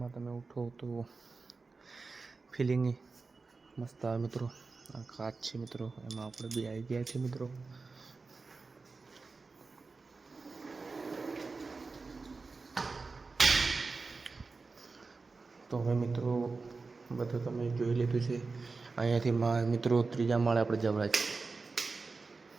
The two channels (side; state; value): left; quieter; 4.1 dB